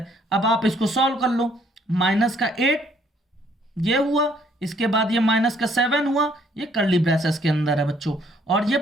अब आप इसको सॉल्व कर लो, माइनस का 8 ये हुआ, इसके बाद ये माइनस का 7 हुआ, ये कर्ली ब्रेसेस के अंदर है बच्चों, और ये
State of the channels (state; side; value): normal; both; correlation 0.65